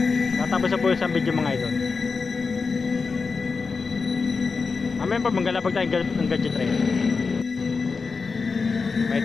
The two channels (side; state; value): right; quieter; 4.7 dB